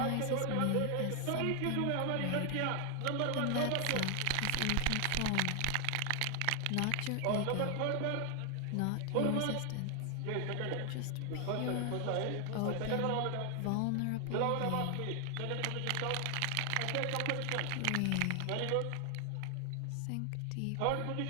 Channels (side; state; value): both; different; correlation 0.00